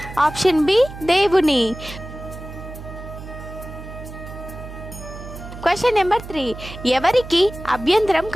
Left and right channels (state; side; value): noise; right; hum, 12 dB below the sound